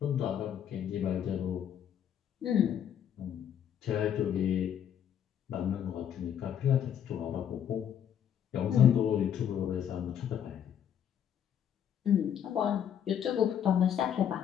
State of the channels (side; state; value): right; quieter; 9.2 dB